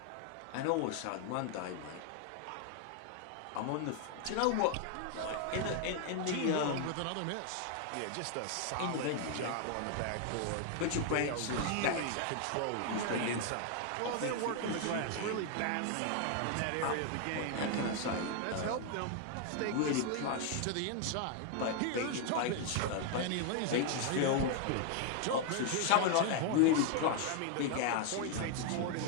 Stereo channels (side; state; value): both; different; correlation 0.00